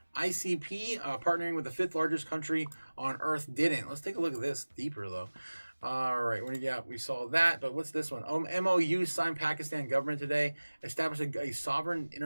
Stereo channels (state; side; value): inverted; both; correlation -1.00